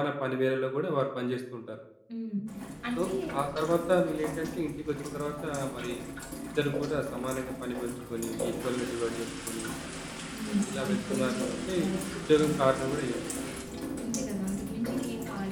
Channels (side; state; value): both; identical; correlation 1.00